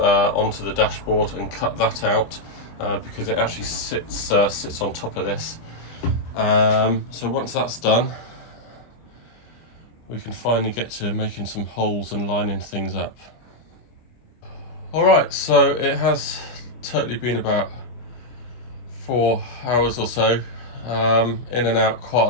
the dashboard and cut that out because it actually sits on top of this. So once that's done, we can finally get to making some holes and lining things up. Alright, so it has totally been about 4 hours or so, in and out quite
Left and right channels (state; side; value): late; right; 25 ms